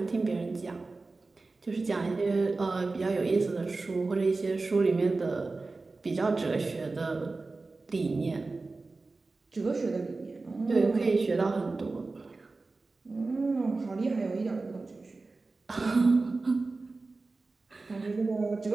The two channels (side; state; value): left; quieter; 3.6 dB